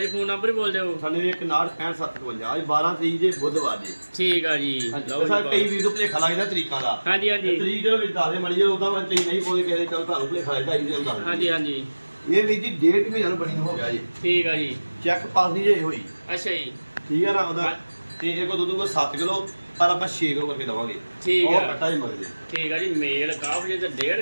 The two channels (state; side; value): inverted; both; correlation -1.00